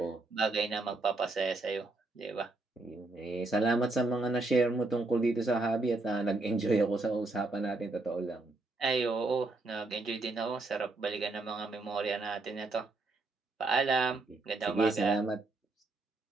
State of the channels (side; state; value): left; quieter; 3.2 dB